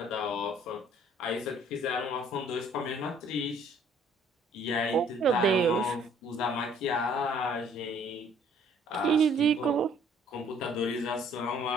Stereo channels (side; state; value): both; normal; correlation 0.59